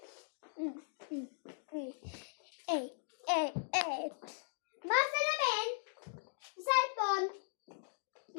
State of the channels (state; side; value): silent; right; digital silence